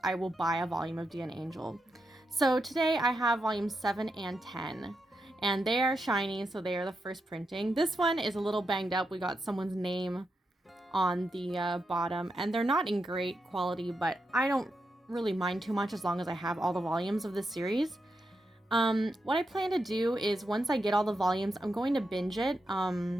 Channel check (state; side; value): normal; both; correlation 0.85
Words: I will buy a volume of Dear Angel. So today I have volumes 7 and 10. And they are shiny, so they are the first printing. This one is a little banged up. We got someone's name on the bottom, and they're not in great quality, but I don't really mind too much as long as I have all the volumes of this series. What I plan to do is, once I get all the volumes, I'm going to binge it.